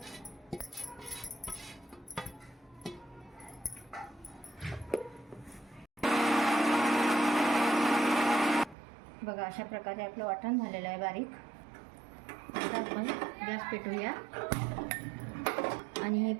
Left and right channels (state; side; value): drops out; left; at 8.8 s